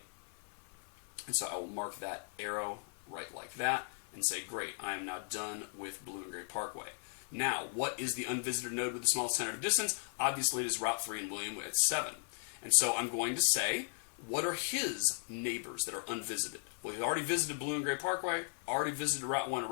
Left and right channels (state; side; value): silent; right; 53 dB below the other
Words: And so I will mark that arrow right like that and say, great, I am now done with Blue and Gray Parkway. Now, what is the unvisited node with the smallest tentative distance? Obviously, it is Route 3 and William at 7. And so I'm going to say, what are his neighbors that are unvisited? Well, he's already visited Blue and Gray Parkway, already visited Route 1 and